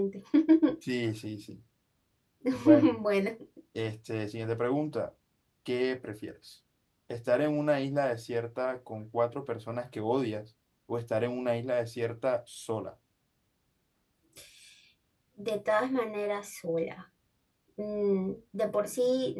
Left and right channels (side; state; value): both; identical; correlation 1.00